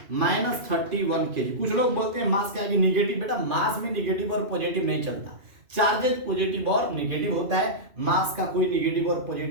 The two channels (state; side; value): late; left; 2.7 ms